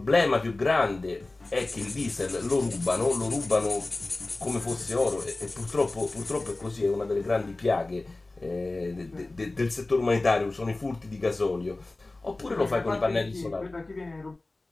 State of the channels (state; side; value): quieter; right; 3.0 dB